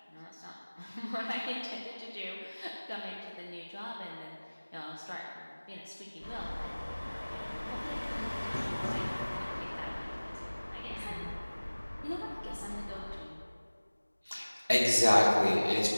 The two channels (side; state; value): both; inverted; correlation -1.00